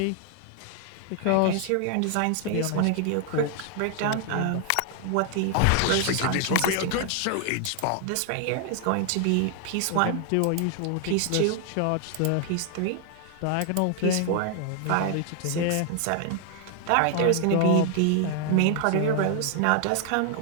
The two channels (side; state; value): both; different; correlation 0.00